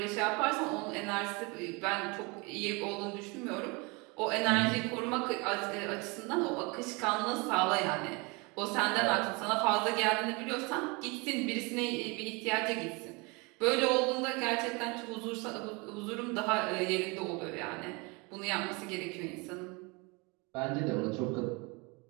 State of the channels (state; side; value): quieter; left; 28.1 dB